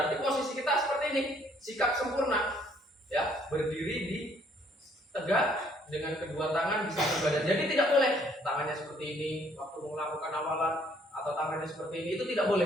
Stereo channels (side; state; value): both; normal; correlation 0.64